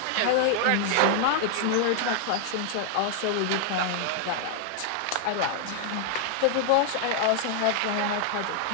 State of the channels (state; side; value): different; both; correlation -0.01